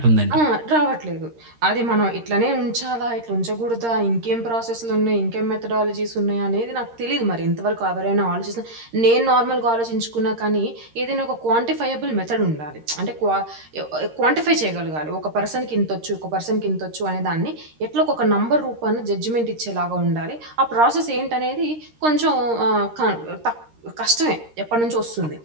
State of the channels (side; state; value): left; late; 13 ms